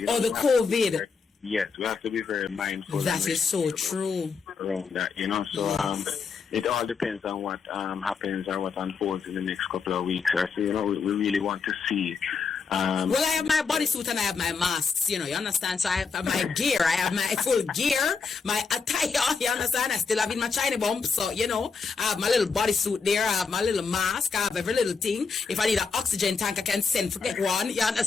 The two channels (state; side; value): quieter; right; 5.2 dB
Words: The COVID. Yes, we have to be very mindful. That is so true. Around that, so it all depends on what happens or what unfolds in the next couple of weeks. So we really want to see. Well, I have my bodysuit and I have my masks, you understand? So I have my gear, I have my full gear, my attire, you understand? I still have in my China bump, so, I have my little bodysuit there, I have my little mask, I have every little thing. If I need an oxygen tank, I can send for get one, you